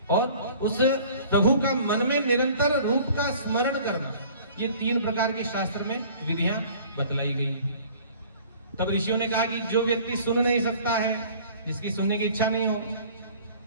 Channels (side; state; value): both; inverted; correlation -0.49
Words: और उस प्रभु का मन में निरंतर रूप का स्मरण करना। ये 3 प्रकार की शास्त्र में विधियां बतलाई गई हैं। तब ऋषियों ने कहा कि जो व्यक्ति सुन नहीं सकता है, जिसकी सुनने की इच्छा नहीं हो,